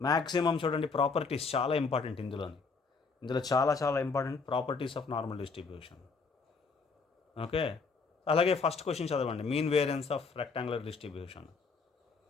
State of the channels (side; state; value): right; quieter; 4.7 dB